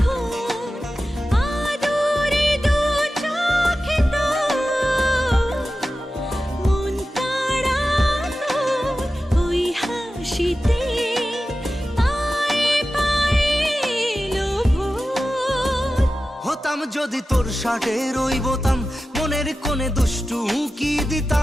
আদরে দু চোখে তোর। মন কাড়া তোর ওই হাসিতে, পায়ে পায়ে এলো ভোর। হতাম যদি তোর শার্টের ওই বোতাম, মনের কোণে দুষ্টু উকি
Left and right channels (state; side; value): normal; both; correlation 0.94